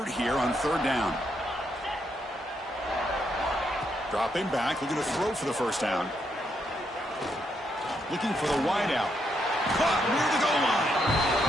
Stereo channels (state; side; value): normal; both; correlation 0.78